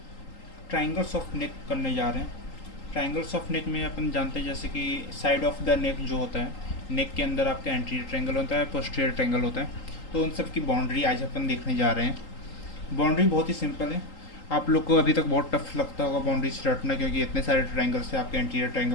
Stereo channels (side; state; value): right; late; 3.8 ms